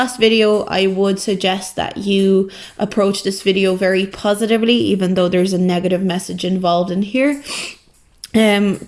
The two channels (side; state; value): both; identical; correlation 1.00